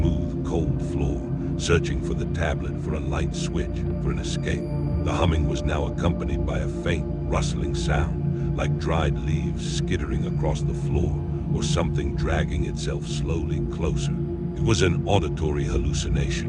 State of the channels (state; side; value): identical; both; correlation 1.00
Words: cold floor, searching for the tablet, for a light switch, for an escape. The humming was now accompanied by a faint, rustling sound, like dried leaves skittering across the floor, or something dragging itself slowly closer. It was an auditory